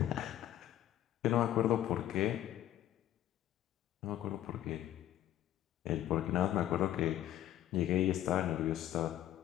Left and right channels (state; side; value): quieter; right; 12.6 dB